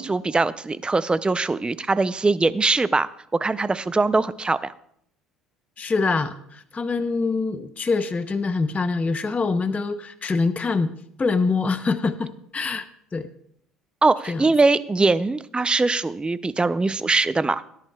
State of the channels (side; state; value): both; normal; correlation 0.85